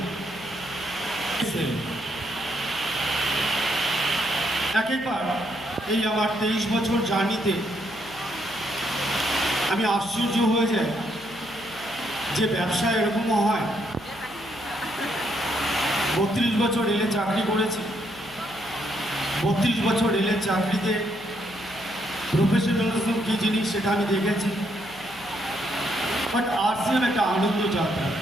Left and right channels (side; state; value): left; noise; hum, 22 dB below the sound